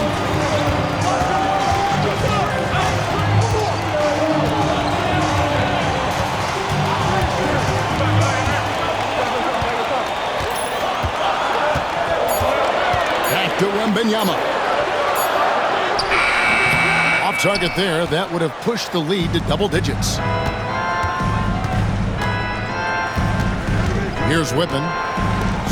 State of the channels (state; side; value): identical; both; correlation 1.00